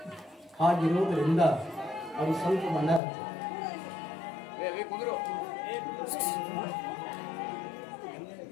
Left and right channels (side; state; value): right; drops out; at 3.0 s